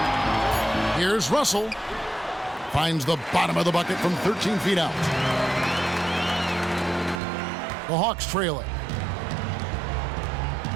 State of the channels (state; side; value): drops out; left; at 7.2 s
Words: Here's Russell. Finds the bottom of the bucket from 13 feet out. The Hawks trail it.